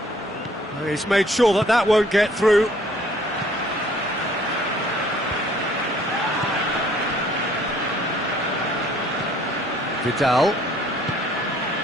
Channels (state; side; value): normal; both; correlation 0.59